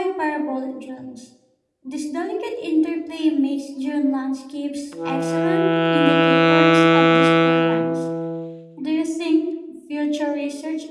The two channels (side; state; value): both; identical; correlation 1.00